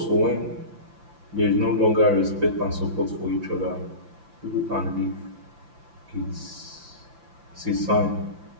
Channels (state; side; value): late; left; 5.9 ms